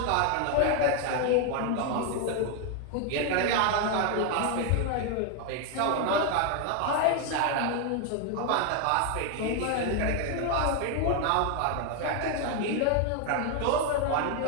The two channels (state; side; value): different; both; correlation 0.01